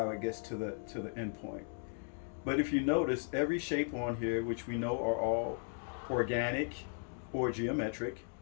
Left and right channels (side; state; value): right; silent; digital silence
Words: it gets to the end point. But if you notice, every shape on here, which we know are all organic or geometric,